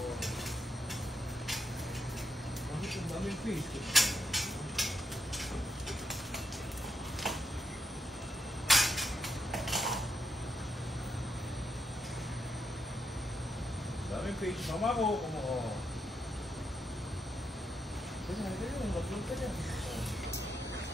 fish. Mama ko.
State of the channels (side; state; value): both; normal; correlation 0.81